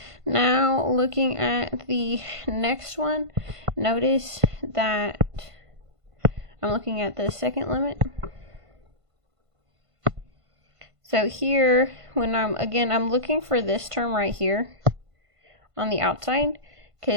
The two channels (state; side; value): late; left; 1.5 ms